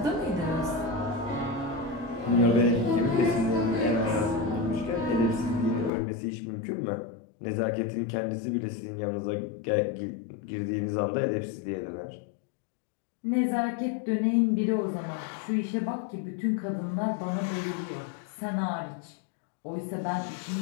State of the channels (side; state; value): right; drops out; at 5.9 s